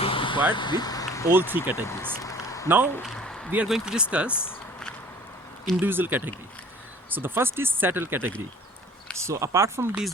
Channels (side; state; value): both; normal; correlation 0.49